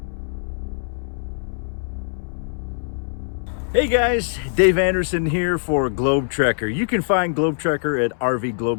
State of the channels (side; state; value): right; silent; 64 dB below the other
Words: Hey guys, Dave Anderson here for Globe Trekker. You can find Globe Trekker at